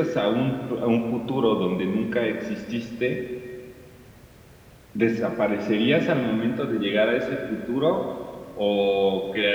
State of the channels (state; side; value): identical; both; correlation 1.00